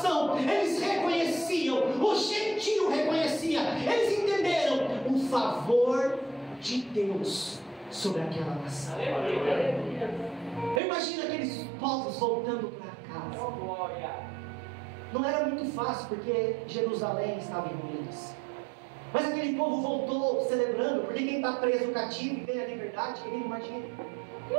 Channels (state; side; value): drops out; left; at 10.8 s